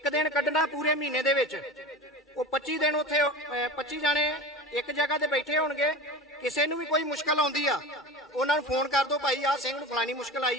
ਦਿਨ ਕੱਢਣਾ ਪੂਰੇ ਮਹੀਨੇ ਦੇ ਵਿੱਚ, ਉਹ 25 ਦਿਨ ਉੱਥੇ 25 ਜਾਣੇ ਇੱਕ ਜਗ੍ਹਾ ਤੇ ਬੈਠੇ ਹੋਣਗੇ। ਕਿਸੇ ਨੂੰ ਵੀ ਕੋਈ ਮੁਸ਼ਕਲ ਆਉਂਦੀ ਆ, ਉਹਨਾਂ ਨੂੰ ਫੋਨ ਕਰ ਦਿਓ, ਭਾਈ ਆਹ ਸਿੰਘ ਨੂੰ ਫਲਾਣੀ ਮੁਸ਼ਕਲ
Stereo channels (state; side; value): normal; both; correlation 0.31